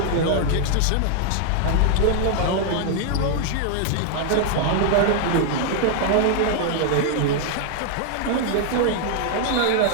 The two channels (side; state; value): both; different; correlation 0.00